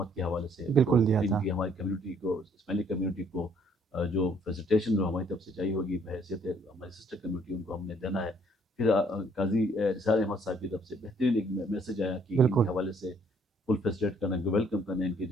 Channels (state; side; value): normal; both; correlation 0.64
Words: کے حوالے سے، بالکل تو دیا ان تھا، کی ہماری کمیونٹی کو، اسماعیلی کمیونٹی کو جو فیسیلیٹیشن جو ہماری طرف سے چاہیے ہوگی بحیثیت ہماری سسٹر کمیونٹی، ان کو ہم نے دینا ہے۔ پھر قاضی اسرار احمد صاحب کی طرف سے بہترین ایک میسج آیا کہ ان بالکل کے حوالے سے فل فیسیلیٹ کرنا، ویلکم کرنا، ان کی